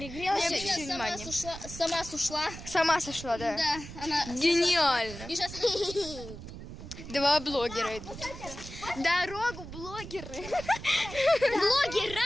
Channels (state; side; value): noise; right; rumble, 12 dB below the sound